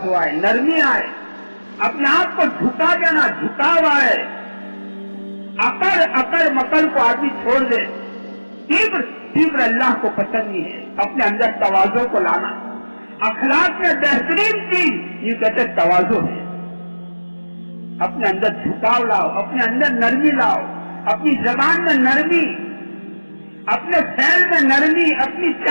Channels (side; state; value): both; inverted; correlation -1.00